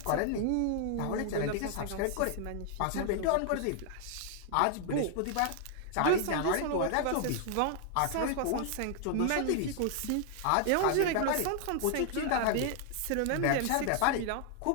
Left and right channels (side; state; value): both; different; correlation 0.00